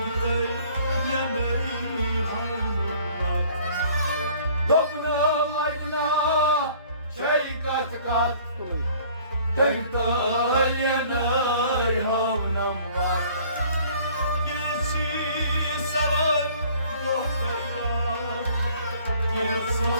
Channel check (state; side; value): inverted; both; correlation -0.54